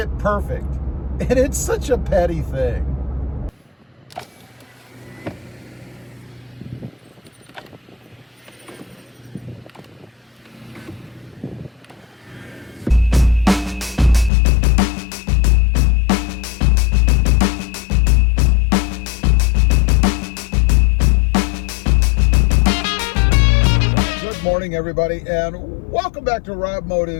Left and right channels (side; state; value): right; drops out; at 14.3 s